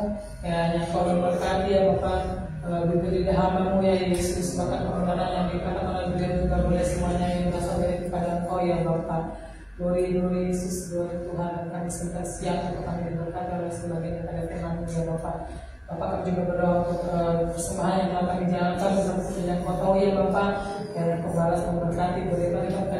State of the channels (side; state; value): both; identical; correlation 1.00